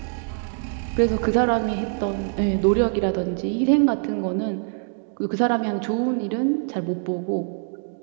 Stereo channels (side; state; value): left; silent; digital silence